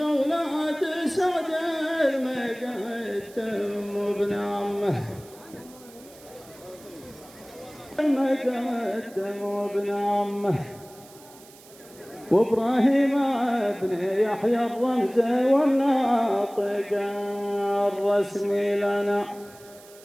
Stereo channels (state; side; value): noise; right; hiss, 23 dB below the sound